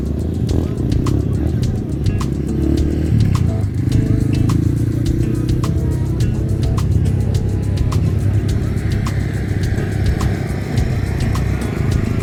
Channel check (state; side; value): identical; both; correlation 1.00